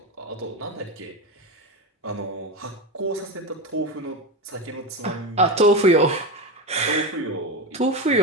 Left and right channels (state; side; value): normal; both; correlation 0.18